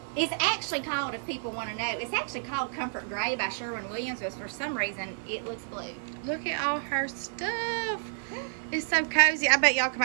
It's actually called, if people want to know, it's actually called Comfort Gray by Sherwin-Williams, but for some reason, it looks blue. Look at all her stuff. It's so cozy. I bet y'all come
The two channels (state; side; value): silent; left; digital silence